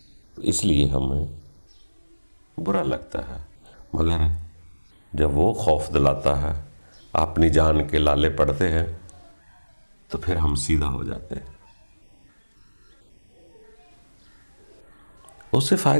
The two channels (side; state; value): both; inverted; correlation -1.00